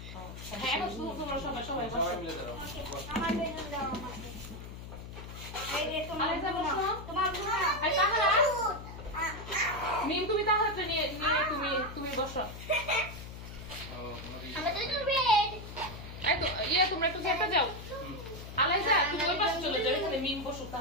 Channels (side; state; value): left; noise; hum, 11 dB below the sound